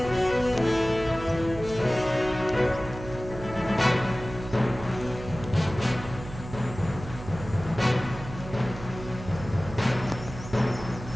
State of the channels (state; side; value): noise; right; hum, 12 dB below the sound